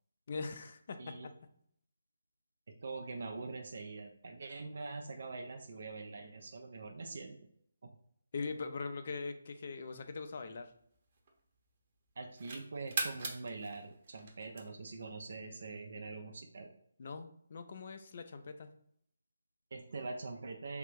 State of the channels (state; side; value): inverted; both; correlation -0.83